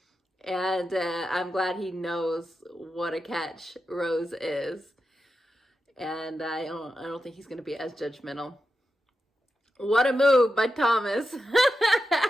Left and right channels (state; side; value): normal; both; correlation 0.89